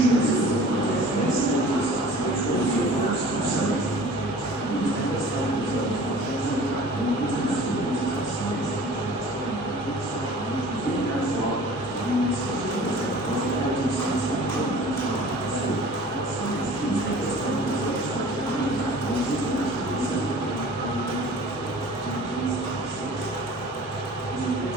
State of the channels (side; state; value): both; normal; correlation 0.45